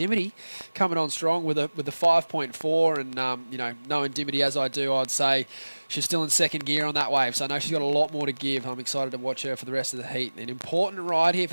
coming on strong with the 5.4. And knowing Dimity as I do, I'd say she's still in second gear on that wave. So I know she's got a lot more to give. I'm excited to watch her for the rest of the heat. An important ride here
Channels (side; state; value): both; inverted; correlation -1.00